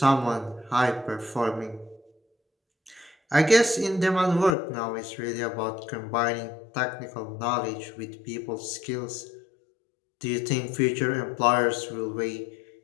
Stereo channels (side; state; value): right; drops out; at 4.5 s